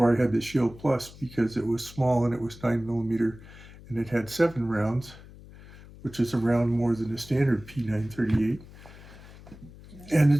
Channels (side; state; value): left; noise; hum, 19 dB below the sound